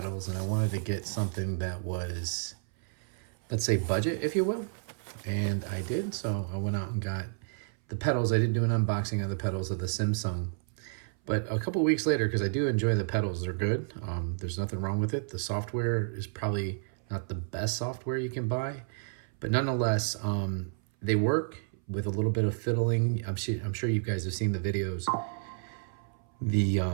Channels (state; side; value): silent; left; 57 dB below the other